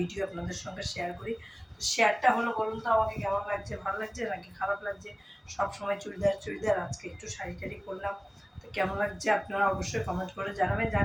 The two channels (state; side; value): identical; both; correlation 1.00